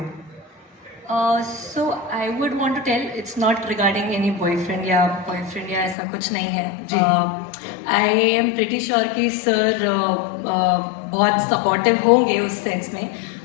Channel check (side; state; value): right; drops out; at 6.0 s